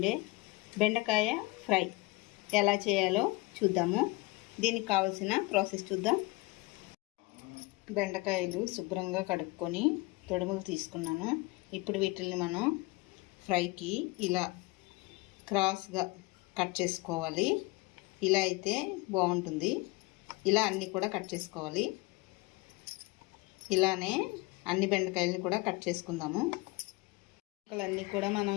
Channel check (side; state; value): right; quieter; 23.6 dB